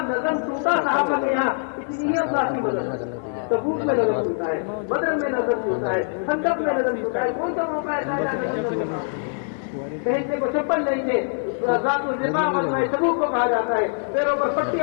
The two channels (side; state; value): right; silent; digital silence